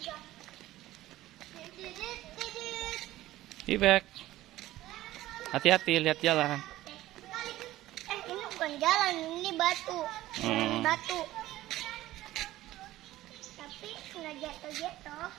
Ibek, hati-hati lihat jalan. Ini bukan jalan, ini batu. Batu. Tapi nggak jatuh-jatuh.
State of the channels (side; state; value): left; quieter; 15.7 dB